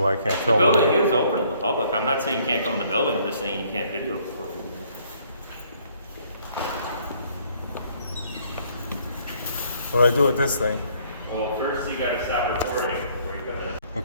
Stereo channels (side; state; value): both; inverted; correlation -0.63